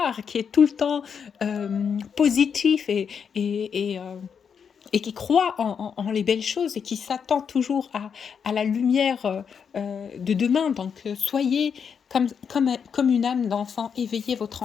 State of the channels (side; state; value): right; quieter; 6.9 dB